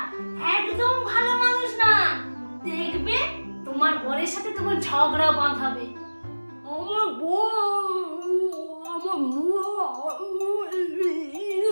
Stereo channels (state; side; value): inverted; both; correlation -1.00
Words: একদম ভালো মানুষ না, দেখবে তোমার বরের সাথে তোমার ঝগড়া বাঁধাবে। আমার